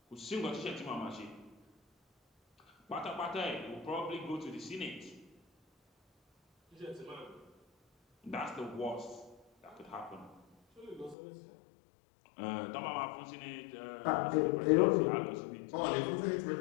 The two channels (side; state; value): right; drops out; at 11.2 s